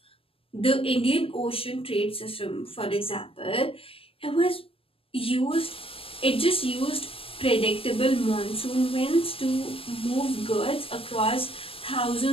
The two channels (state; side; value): late; right; 0.26 ms